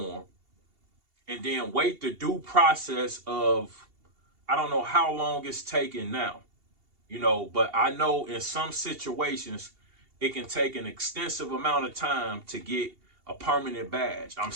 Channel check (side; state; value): left; late; 2.8 ms